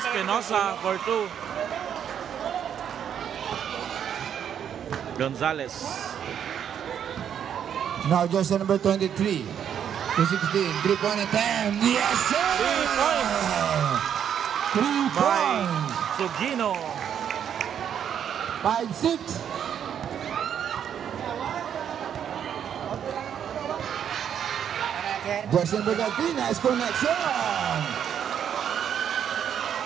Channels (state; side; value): quieter; left; 8.8 dB